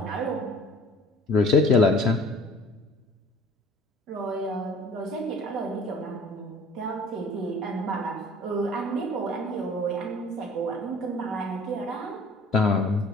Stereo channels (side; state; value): both; normal; correlation 0.50